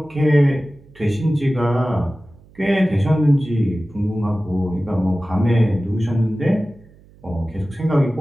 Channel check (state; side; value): noise; right; hum, 26 dB below the sound